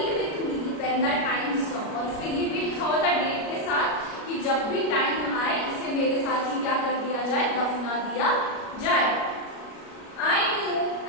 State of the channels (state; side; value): late; right; 37 ms